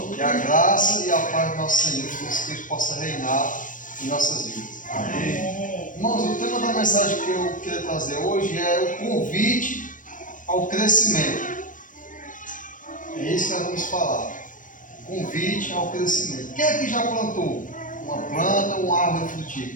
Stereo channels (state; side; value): late; right; 0.38 ms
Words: Que a graça e a paz do nosso Senhor Jesus Cristo possa reinar em nossas vidas. Amém. Irmãos, o tema da mensagem que eu quero trazer hoje é o convite ao crescimento. É isso que nós vamos falar. Convite ao crescimento. Quem é que já plantou uma planta ou uma árvore